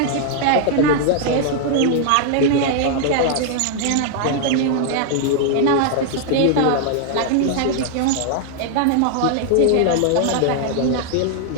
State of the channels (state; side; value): different; both; correlation 0.00